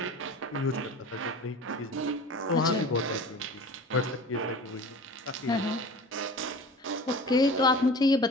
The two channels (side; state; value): both; normal; correlation 0.38